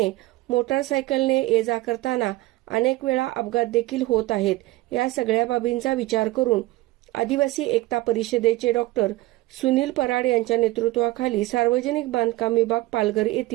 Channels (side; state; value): left; quieter; 18.4 dB